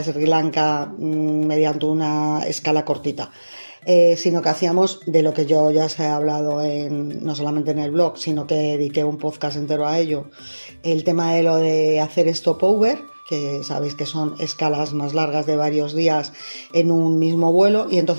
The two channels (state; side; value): inverted; both; correlation -1.00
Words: Sri Lanka mediante una escala cortita. Sino que hacíamos de lo que yo ya os he hablado no solamente en el blog, sino que dediqué un podcast entero a ello, el tema de lo de hacer stopover, que sabéis que son escalas más largas de varios días en un mismo vuelo, y